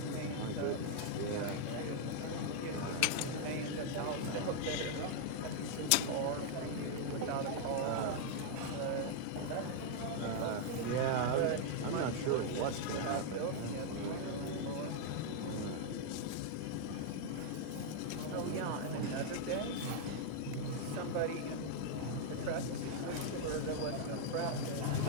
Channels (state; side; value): different; both; correlation -0.01